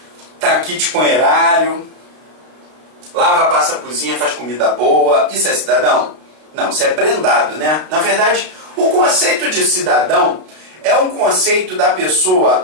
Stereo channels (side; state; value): left; late; 32 ms